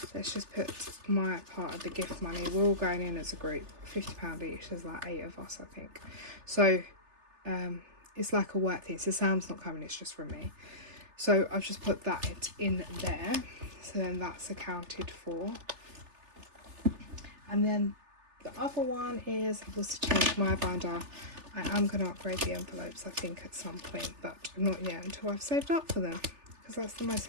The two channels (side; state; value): left; late; 3.3 ms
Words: let's just put my part of the gift money. We're all going in as a group, £50 each. There's like 8 of us, I think. So it's like a work thing. So Sam's not coming, it's just from me. So I've just put that in there. So then that's accounted for. And then the other one is, I've also changed my binder. I am going to upgrade the envelopes, I think, at some point, but not yet until I've saved up for them. Because that's the most